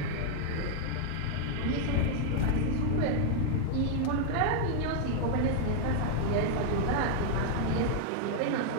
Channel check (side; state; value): both; different; correlation -0.01